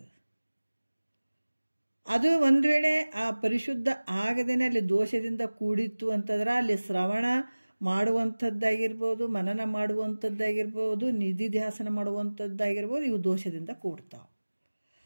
ಅದು ಒಂದು ವೇಳೆ ಆ ಪರಿಶುದ್ಧ ಆಗದೇನೆ ಅಲ್ಲಿ ದೋಷದಿಂದ ಕೂಡಿತ್ತು ಅಂತಂದ್ರೆ ಅಲ್ಲಿ ಶ್ರವಣ ಮಾಡುವಂಥದ್ದಾಗಿರ್ಬೋದು, ಮನನ ಮಾಡುವಂಥದ್ದಾಗಿರ್ಬೋದು, ನಿಧಿಧ್ಯಾಸನ ಮಾಡುವಂಥದ್ದಾಗಿರ್ಬೋದು, ಇವು ದೋಷದಿಂದ ಕೂಡ್ತಾವೆ.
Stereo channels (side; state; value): both; inverted; correlation -1.00